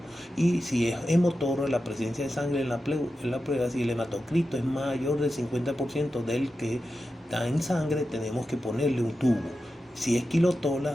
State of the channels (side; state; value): both; normal; correlation 0.91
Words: Y si es hemotorro, la presencia de sangre en la pleura, si el hematocrito es mayor del 50% del que está en sangre, tenemos que ponerle un tubo. Si es